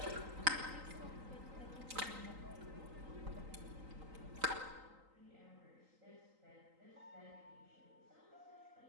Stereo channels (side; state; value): left; late; 3.8 ms